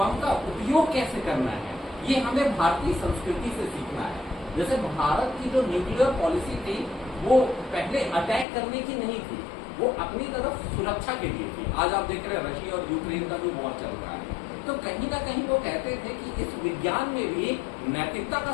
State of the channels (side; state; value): right; drops out; at 8.5 s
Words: का उपयोग कैसे करना है ये हमें भारतीय संस्कृति से सीखना है। जैसे भारत की जो न्यूक्लियर पॉलिसी थी वो पहले अटैक करने की नहीं थी, वो अपनी तरफ सुरक्षा के लिए थी। आज आप देख रहे हैं रशिया और यूक्रेन का जो वॉर चल रहा है, तो कहीं ना कहीं वो कहते थे कि इस विज्ञान में भी नैतिकता का